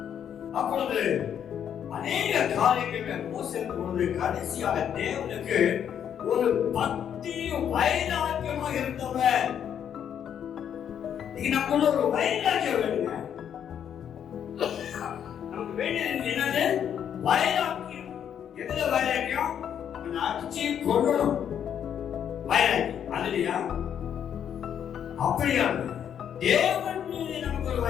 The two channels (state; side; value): quieter; right; 9.0 dB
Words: அப்பொழுது அநேக காரியங்கள் மோசே பொழுது கடைசியாக தேவனுக்கு ஒரு பக்தி வைராக்கியமா இருந்தவர். நமக்குள்ள ஒரு வைராக்கியம் வேணுங்க. நமக்கு வேண்டியது என்னது? வைராக்கியம். எதுல வைராக்கியம்? அடிச்சு கொள்ளணும் வைராக்கியம், அதுலயா? அப்படியா? தேவன் மீது நமக்கு ஒரு